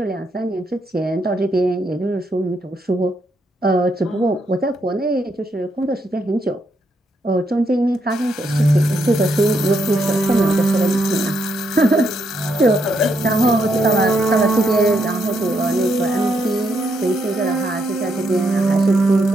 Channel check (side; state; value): both; normal; correlation 0.78